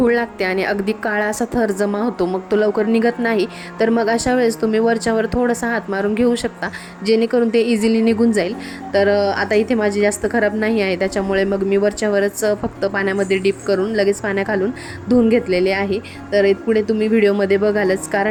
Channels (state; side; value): identical; both; correlation 1.00